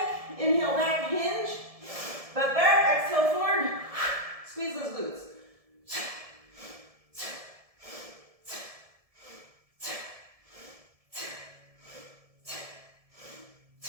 inhale back, hinge, butt back, exhale forward, squeeze those glutes.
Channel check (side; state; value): left; late; 1.7 ms